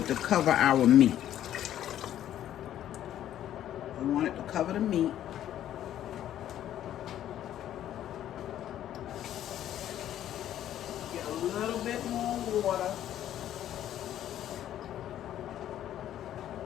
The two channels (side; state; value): right; quieter; 11.6 dB